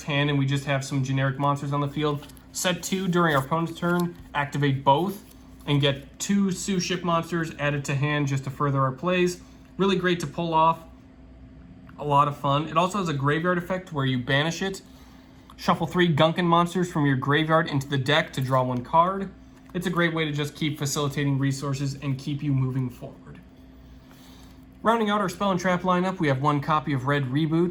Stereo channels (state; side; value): identical; both; correlation 1.00